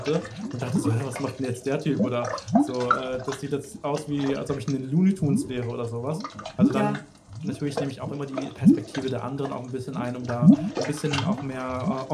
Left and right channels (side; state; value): both; identical; correlation 1.00